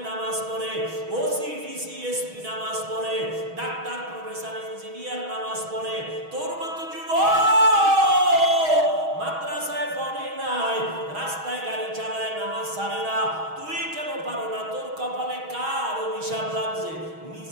নামাজ পড়ে, ওসি ডিসি এসপি নামাজ পড়ে, ডাক্তার প্রফেসর ইঞ্জিনিয়ার নামাজ পড়ে, তোর মতো যুবক মাদ্রাসায় পড়ে নাই, রাস্তায় গাড়ি চালায়, নামাজ ছাড়ে না, তুই কেন পারো না? তোর কপালে কার অভিশাপ লাগছে?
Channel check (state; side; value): late; left; 6.3 ms